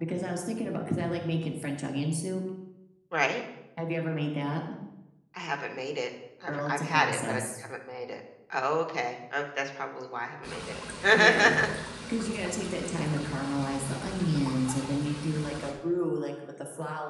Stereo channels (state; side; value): identical; both; correlation 1.00